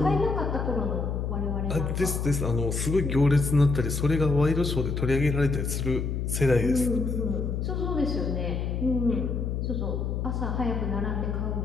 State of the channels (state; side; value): noise; left; hum, 1 dB below the sound